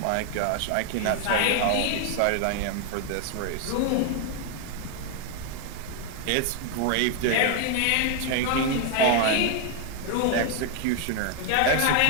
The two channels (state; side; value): different; both; correlation 0.00